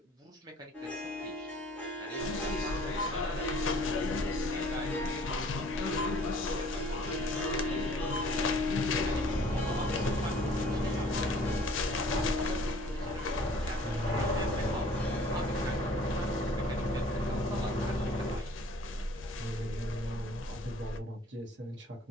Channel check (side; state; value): both; normal; correlation 0.53